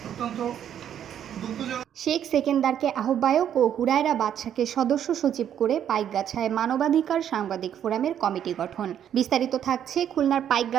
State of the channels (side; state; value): left; quieter; 9.7 dB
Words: অত্যন্ত দুঃখজনক। শেখ সেকেন্দারকে আহ্বায়ক ও হুরায়রা বাদশাকে সদস্য সচিব করে পাইকগাছায় মানবাধিকার সাংবাদিক ফোরামের কমিটি গঠন। বিস্তারিত থাকছে খুলনার